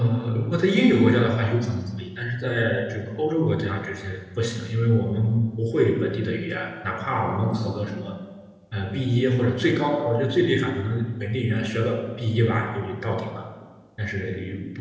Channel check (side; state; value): both; identical; correlation 1.00